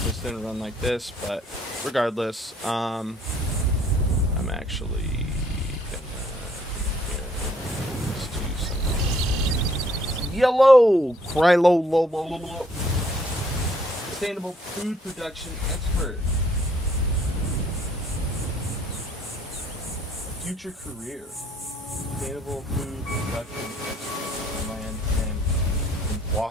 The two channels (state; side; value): normal; both; correlation 0.64